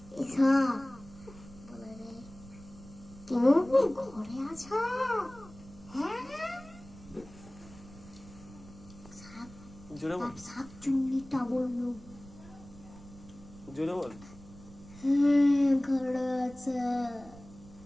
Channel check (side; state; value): right; noise; rumble, 19 dB below the sound